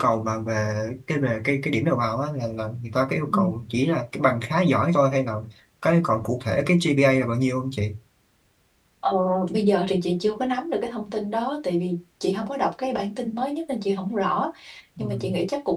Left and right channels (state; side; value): identical; both; correlation 1.00